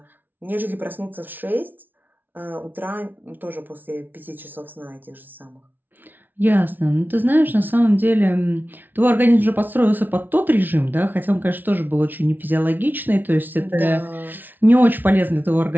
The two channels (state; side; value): late; left; 0.088 ms